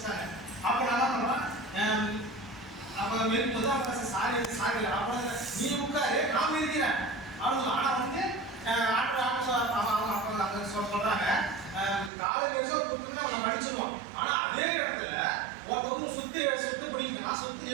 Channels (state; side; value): drops out; left; at 12.1 s